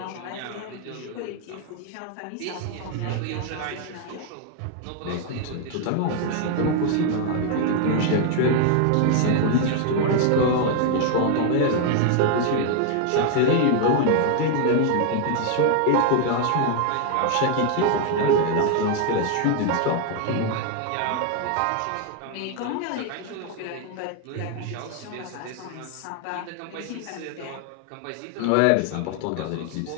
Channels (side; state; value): both; different; correlation 0.00